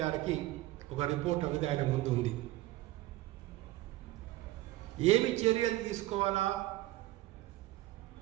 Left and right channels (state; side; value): quieter; left; 17.3 dB